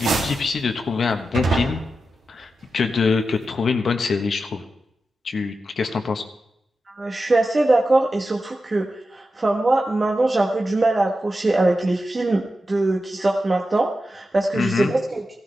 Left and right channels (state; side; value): normal; both; correlation 0.90